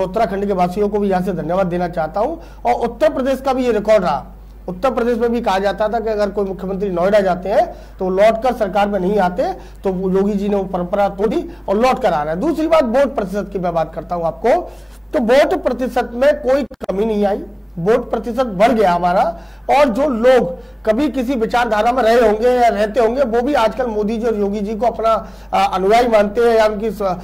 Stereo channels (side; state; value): both; identical; correlation 1.00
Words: उत्तराखंड के वासियों को भी यहाँ से धन्यवाद देना चाहता हूँ। और उत्तर प्रदेश का भी ये रिकॉर्ड रहा। उत्तर प्रदेश में भी कहा जाता था कि अगर कोई मुख्यमंत्री नोएडा जाते हैं तो लौटकर सरकार में नहीं आते, तो योगी जी ने वो परंपरा तोड़ी और लौट कर आ रहा है। दूसरी बात, वोट प्रतिशत की मैं बात करता हूं आपको, तो वोट प्रतिशत में कोई कमी नहीं आई, वोट प्रतिशत बढ़ गया हमारा। और जो लोग कभी किसी विचारधारा में रहे होंगे या रहते होंगे, वो भी आजकल मोदी जी और योगी जी को अपना अनुयायी मानते हैं या उनकी